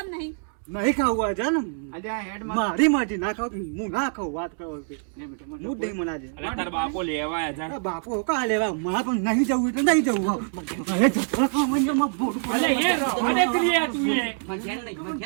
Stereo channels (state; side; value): silent; left; 58 dB below the other